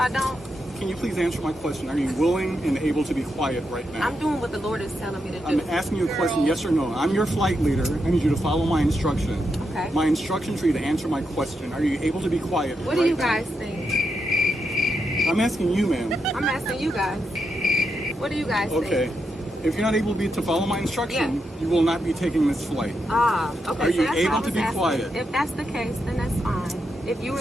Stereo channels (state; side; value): normal; both; correlation 0.84